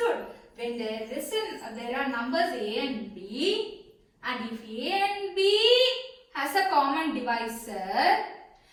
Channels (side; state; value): both; identical; correlation 1.00